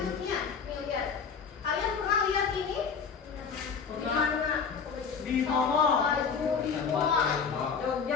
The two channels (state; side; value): quieter; right; 6.0 dB